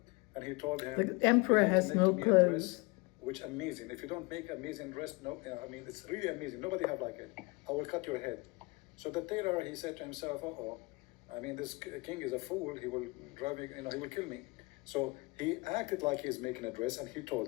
and he told him, The emperor "You have to has make no me a dress which amazing. If you don't make amazing dress, no, I mean, it's really amazing. Nobody have like it. I will cut your head. So the tailor, he said to himself, uh-oh, I mean, this king is a fool. He will drive me, he will kill me. So he acted like he's making a dress, and he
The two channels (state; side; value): quieter; right; 26.3 dB